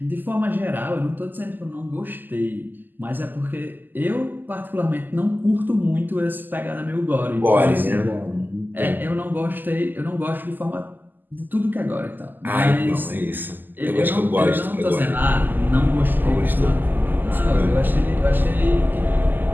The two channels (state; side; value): late; left; 0.089 ms